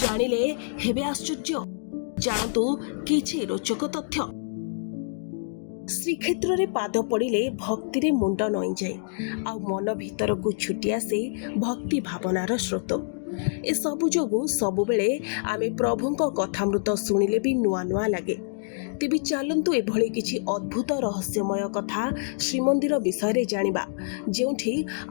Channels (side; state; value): right; silent; digital silence